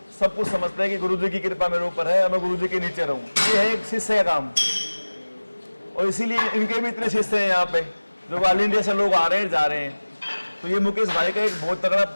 सब कुछ समझते हैं कि गुरुजी की कृपा मेरे ऊपर है और मैं गुरुजी के नीचे रहूं। ये है एक शिष्य का काम, और इसीलिए इनके भी इतने शिष्य हैं यहाँ पे, जो ऑल इंडिया से लोग आ रहे हैं, जा रहे हैं। तो ये मुकेश भाई का एक बहुत तगड़ा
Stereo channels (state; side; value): inverted; both; correlation -1.00